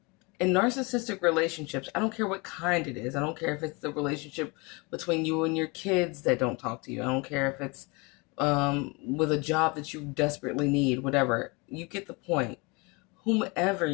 in narcissistic relationships, I don't care what kind it is. I don't care if it's the relationship between you and your kids that don't talk to you. I don't care if it's with a job that you desperately need, whatever. You get the point. Whomever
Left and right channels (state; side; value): quieter; right; 28.2 dB